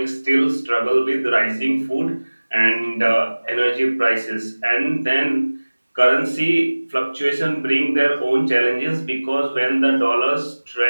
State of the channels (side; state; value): both; inverted; correlation -1.00